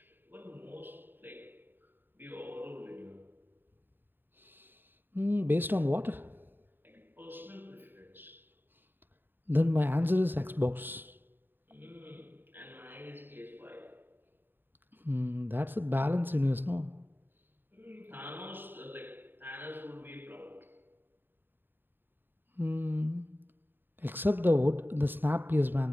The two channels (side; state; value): left; late; 0.095 ms